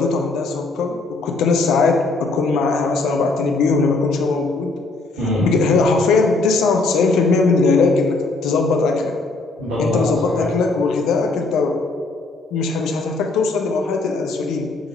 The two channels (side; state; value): right; quieter; 3.4 dB